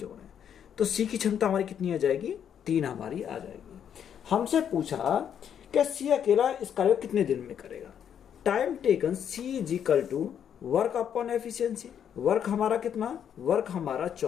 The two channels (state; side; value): quieter; right; 8.8 dB